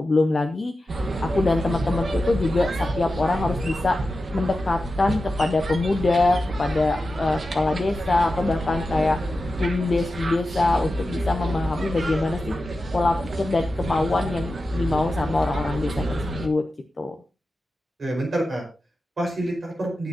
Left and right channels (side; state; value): both; normal; correlation 0.92